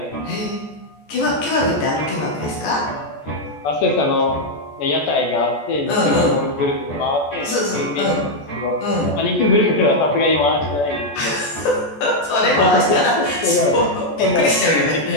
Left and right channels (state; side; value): late; right; 14 ms